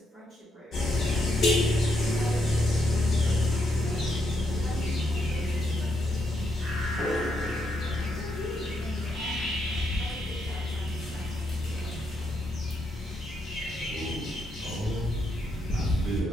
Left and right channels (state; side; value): normal; both; correlation 0.79